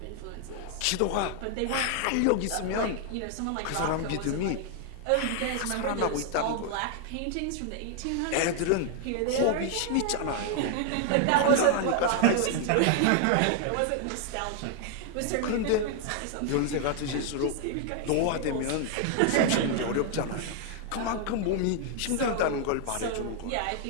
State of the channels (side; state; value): both; different; correlation 0.00